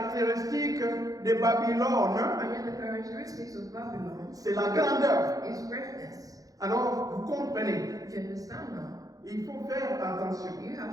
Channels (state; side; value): late; left; 0.17 ms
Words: de Babylone, And yet the characteristics of Babylon c'est la grandeur. is greatness. Alors, vous comprenez, Do you understand now? il faut faire attention. You